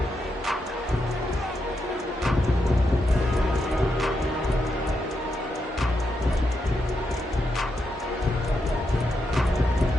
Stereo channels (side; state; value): both; normal; correlation 0.83